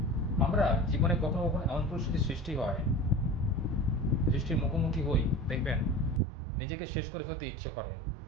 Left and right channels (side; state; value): left; drops out; at 6.2 s